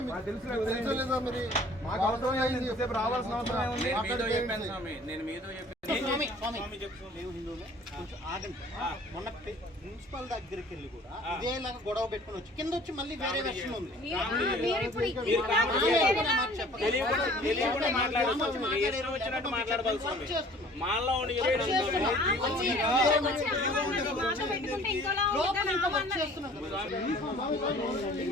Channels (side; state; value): both; normal; correlation 0.51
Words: మాకు అవసరం లేదు, రావాల్సిన అవసరం ఉంది. నేను మీతో మొన్న ప్రిన్సిపల్ దగ్గరికి వెళ్ళి కూడా ఇదేలాగా గొడవ పెట్టుకుని వచ్చి కింద వచ్చి మళ్ళీ వేరే వెర్షన్ ఉంది.